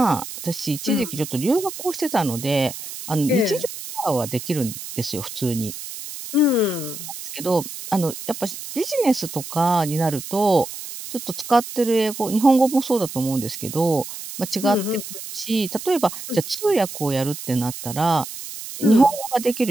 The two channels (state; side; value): noise; right; hiss, 10 dB below the sound